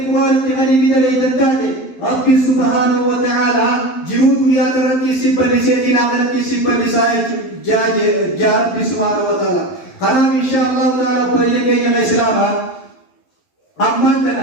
تغني بدلي تنتاجه ربي سبحانه وتعالى جنود يا ترتي سبل سيدنا ترتي سبل سايج جا ربي سبحانه وتعالى أنا إن شاء الله تعالى بريء يا الإسلام أما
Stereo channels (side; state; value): right; late; 11 ms